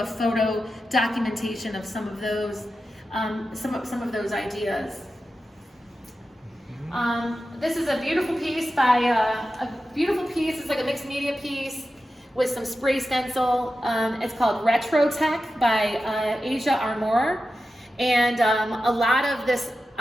photo documentation of some of those ideas. This is a beautiful piece It's like a mixed media piece with some spray stencil. It's called Retro Tech by Asia Armour. And a lot of this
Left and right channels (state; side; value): normal; both; correlation 0.92